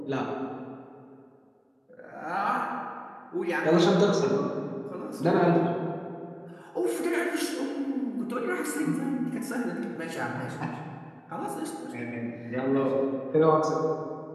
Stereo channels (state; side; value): identical; both; correlation 1.00